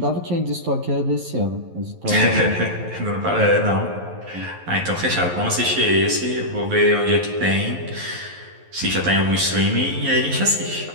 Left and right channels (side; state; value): left; late; 11 ms